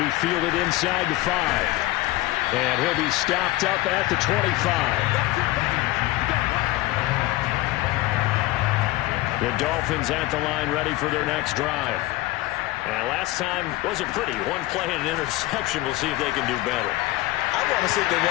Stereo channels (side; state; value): right; quieter; 17.8 dB